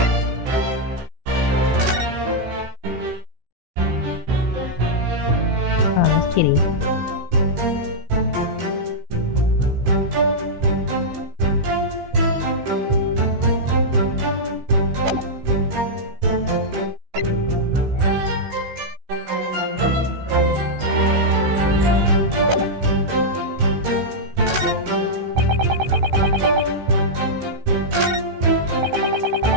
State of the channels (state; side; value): late; left; 16 ms